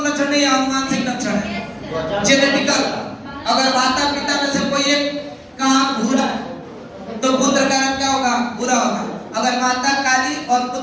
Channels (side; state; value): both; identical; correlation 1.00